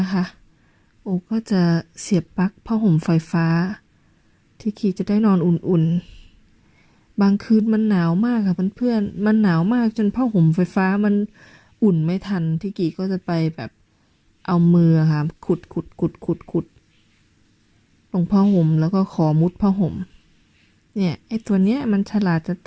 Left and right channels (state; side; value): identical; both; correlation 1.00